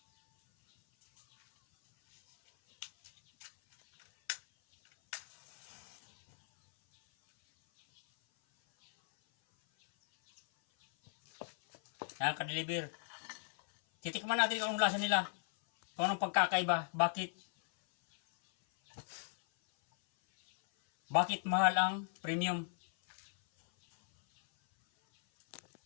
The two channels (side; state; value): right; silent; 54 dB below the other